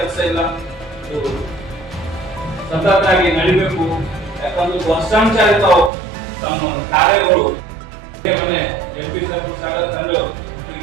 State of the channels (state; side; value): drops out; left; at 5.9 s